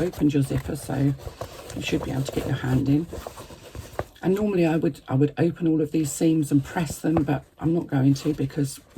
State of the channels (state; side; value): identical; both; correlation 1.00